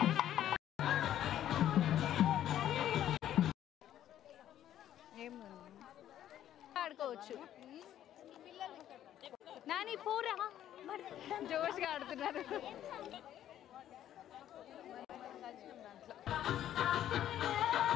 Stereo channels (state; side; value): quieter; right; 11.5 dB